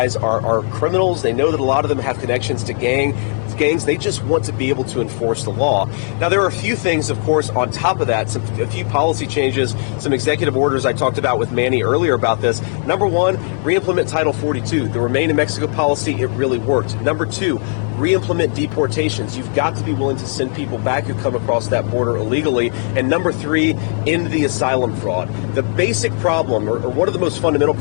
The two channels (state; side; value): silent; right; 59 dB below the other